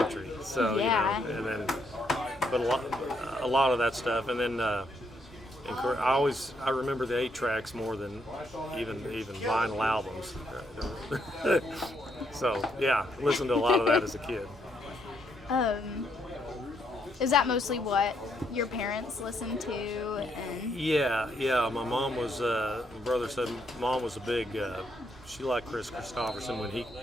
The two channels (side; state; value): both; normal; correlation 0.74